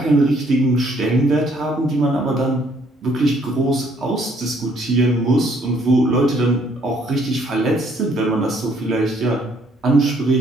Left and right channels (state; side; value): normal; both; correlation 0.65